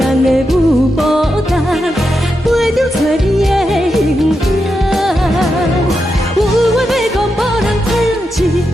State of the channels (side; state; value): both; normal; correlation 0.86